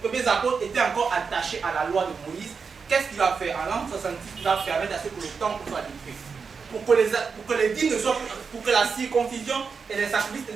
premiers apôtres étaient encore attachés à la loi de Moïse, qu'est-ce qu'il va faire? En l'an 66, il va permettre à ce que le temple soit détruit. Pour que les dîmes ne soient plus, pour que la circoncision et les sacrifices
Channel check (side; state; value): left; quieter; 5.5 dB